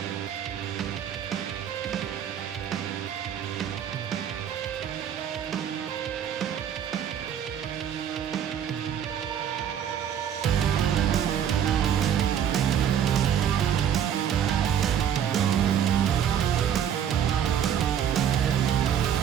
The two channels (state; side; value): quieter; left; 9.1 dB